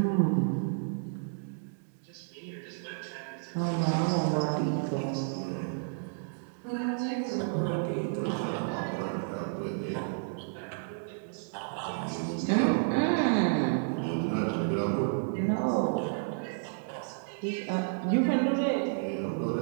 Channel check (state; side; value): silent; left; digital silence